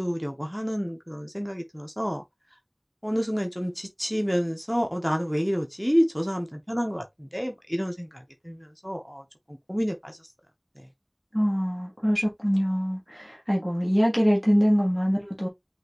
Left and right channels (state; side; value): identical; both; correlation 1.00